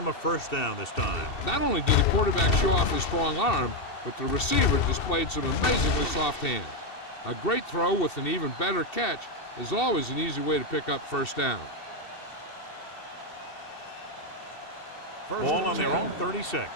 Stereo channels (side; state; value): right; late; 2.7 ms